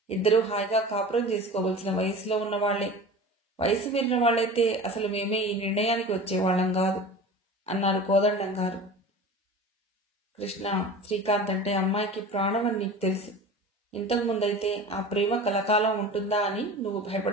ఇద్దరూ హాయిగా కాపురం చేసుకోవలసిన వయసులో ఉన్నవాళ్లే. వయసు మీరిన వాళ్ళైతే అసలు మేమే ఈ నిర్ణయానికి వచ్చేవాళ్లం కాదు అన్నారు కోదండం గారు. కృష్ణ, శ్రీకాంత్ అంటే అమ్మాయికి ప్రాణం అని నీకు తెలుసు. ఇంతకుముందైతే ఆ ప్రేమ కలకాలం ఉంటుందా అని నువ్వు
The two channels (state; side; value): normal; both; correlation 0.36